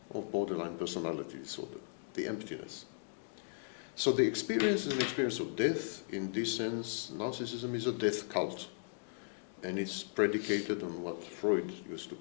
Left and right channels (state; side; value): silent; right; digital silence